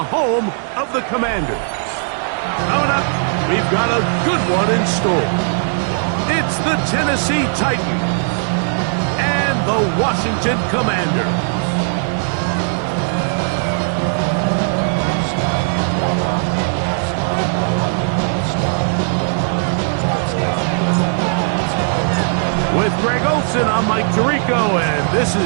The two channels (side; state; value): left; silent; 68 dB below the other